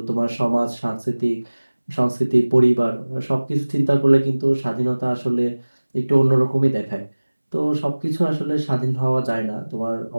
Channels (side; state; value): both; inverted; correlation -1.00